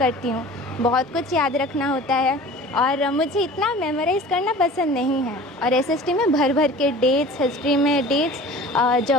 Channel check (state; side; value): normal; both; correlation 0.42